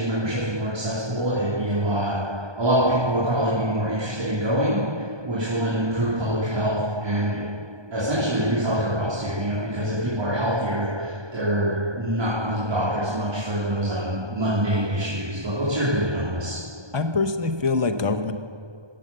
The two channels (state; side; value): late; left; 1.2 ms